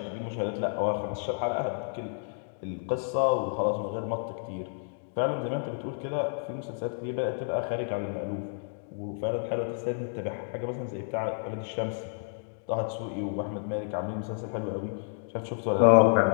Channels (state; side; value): silent; right; digital silence